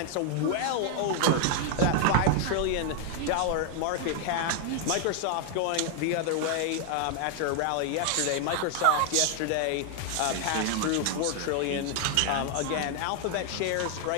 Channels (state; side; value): different; both; correlation 0.00